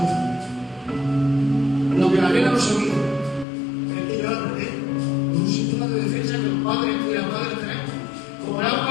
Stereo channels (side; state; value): right; drops out; at 3.5 s